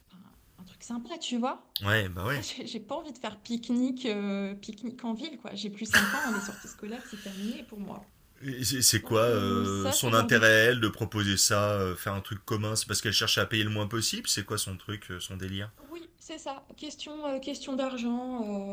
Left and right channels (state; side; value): identical; both; correlation 1.00